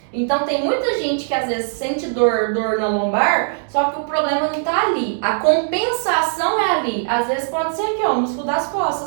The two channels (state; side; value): silent; left; digital silence